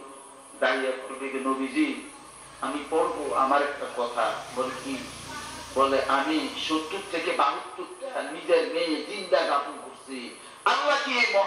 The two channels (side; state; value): both; identical; correlation 1.00